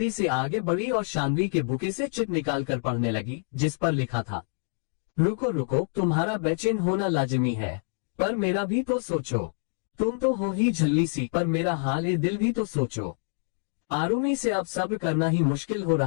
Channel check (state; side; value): silent; right; digital silence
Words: से आगे बढ़ी और शानवी के बुके से चिट निकाल कर पढ़ने लगी जिस पर लिखा था, रुको रुको, तुम्हारा बेचैन होना लाजिमी है, पर मेरा भी तो सोचो, तुम तो हो ही झल्ली सी, पर मेरा हाल ए दिल भी तो सोचो। आरुमी से अब सब्र करना ही मुश्किल हो